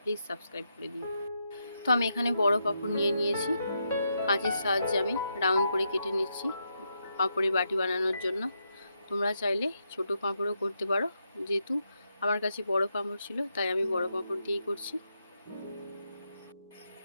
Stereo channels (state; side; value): inverted; both; correlation -0.82